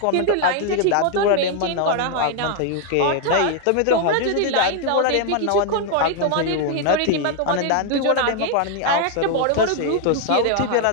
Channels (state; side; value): different; both; correlation 0.00